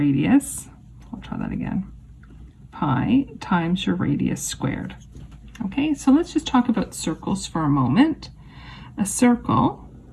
try that again. Pi times your radius squared. Okay, so let's just talk about circles for a moment. A circle,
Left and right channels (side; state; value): both; identical; correlation 1.00